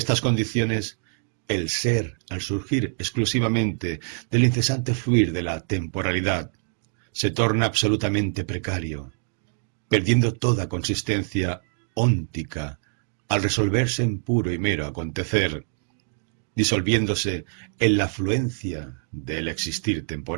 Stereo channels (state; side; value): silent; left; 62 dB below the other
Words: condiciones, el ser, al surgir exclusivamente del incesante fluir de la temporalidad, se torna absolutamente precario, perdiendo toda consistencia óntica al resolverse en puro y mero acontecer, disolviéndose en la fluencia del existir